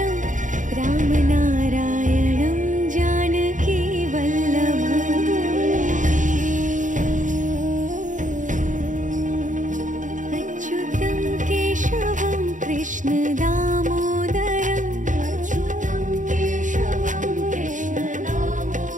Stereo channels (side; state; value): left; late; 0.37 ms